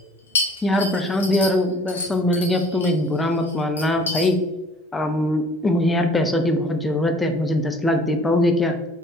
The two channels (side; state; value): both; normal; correlation 0.53